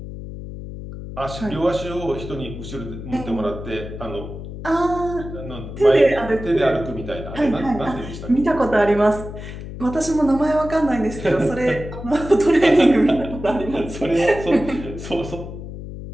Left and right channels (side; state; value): left; noise; hum, 10 dB below the sound